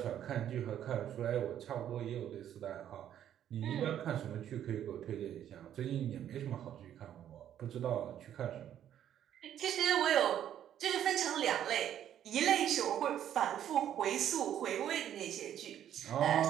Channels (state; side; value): quieter; left; 10.5 dB